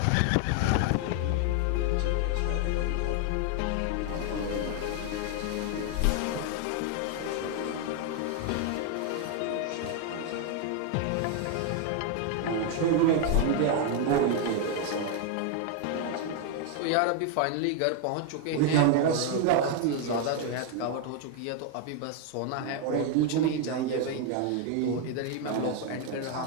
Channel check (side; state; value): both; different; correlation 0.01